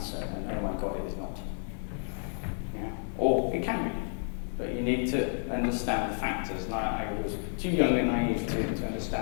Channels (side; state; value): right; silent; 57 dB below the other